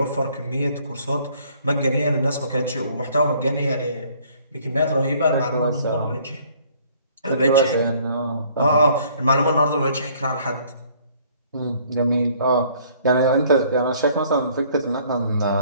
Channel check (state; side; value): inverted; both; correlation -0.59